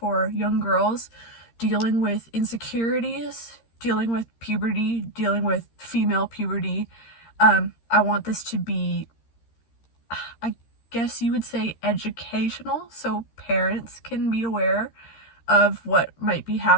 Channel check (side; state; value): right; late; 13 ms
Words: young girls dealing with insecurities, dealing with puberty, dealing with female puberty. I want this to be, I guess you would say, educational, so parents can be aware of what might be